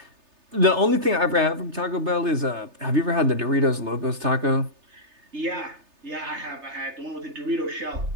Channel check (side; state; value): left; late; 3.3 ms